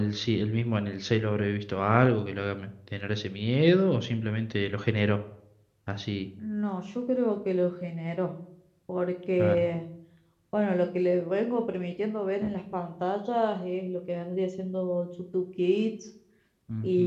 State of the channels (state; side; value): identical; both; correlation 1.00